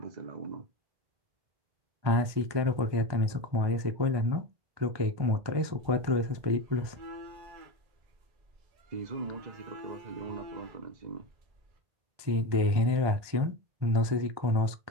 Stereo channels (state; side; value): late; left; 1.2 ms